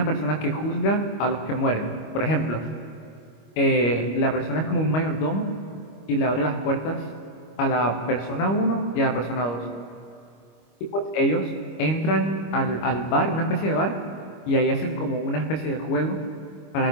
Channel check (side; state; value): right; late; 25 ms